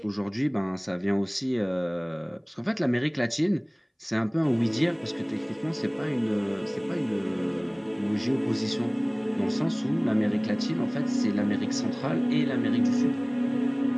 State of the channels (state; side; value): identical; both; correlation 1.00